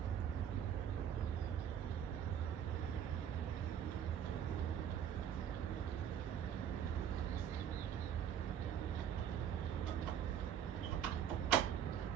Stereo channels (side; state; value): left; quieter; 9.1 dB